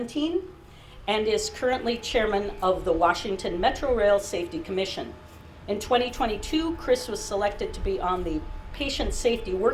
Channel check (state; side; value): identical; both; correlation 1.00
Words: and is currently chairman of the Washington Metro Rail Safety Commission. In 2022, Chris was selected to be on the Patient Safety